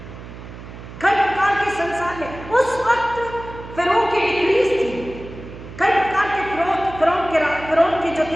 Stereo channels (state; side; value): noise; right; hum, 14 dB below the sound